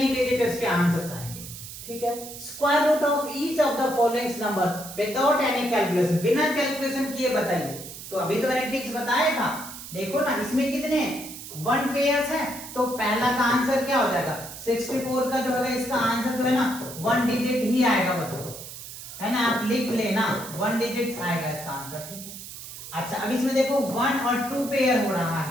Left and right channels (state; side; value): noise; right; hiss, 12 dB below the sound